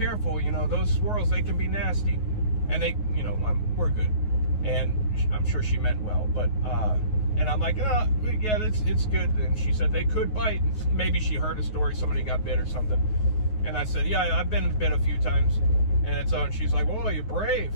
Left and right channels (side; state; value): right; late; 9.4 ms